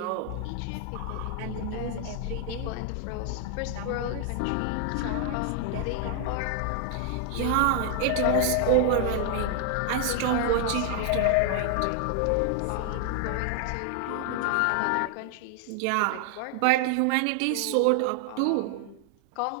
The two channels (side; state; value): both; different; correlation 0.00